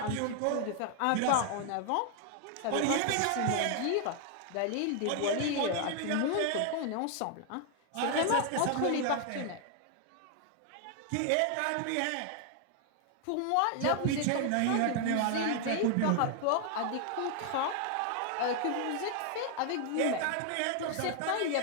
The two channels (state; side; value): different; both; correlation 0.00